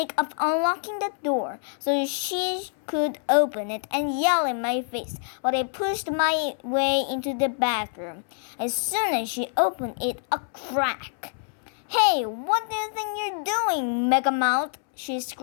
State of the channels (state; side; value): silent; right; 61 dB below the other